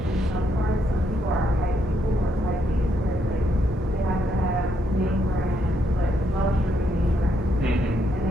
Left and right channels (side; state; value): both; normal; correlation 0.75